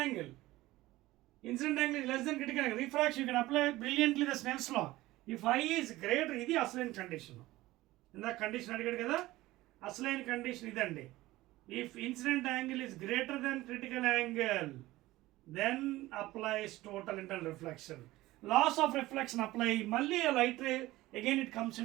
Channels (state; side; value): quieter; left; 17.8 dB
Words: angle. Incident angle is less than critical angle. Refraction, you can apply brilliantly the Snell's law. If I is greater, ఇది అసలైన కండిషన్. ఇందాక కండిషన్ అడిగాడు కదా, అసలైన కండిషన్ ఇదండి. If incident angle is greater than critical angle, then applies total internal reflection. Loss of reflection apply, మళ్ళీ a light ray, again it comes